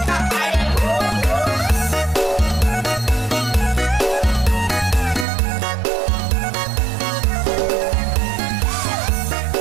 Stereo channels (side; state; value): left; drops out; at 5.2 s